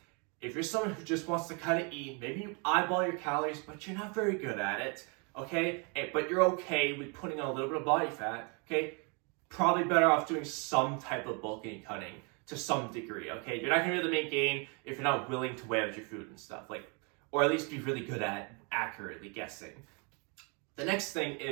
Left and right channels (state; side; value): quieter; left; 34.1 dB